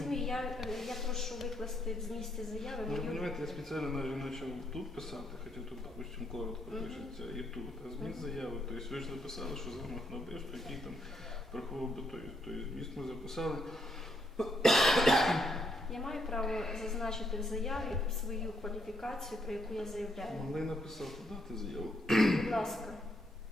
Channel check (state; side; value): normal; both; correlation 0.75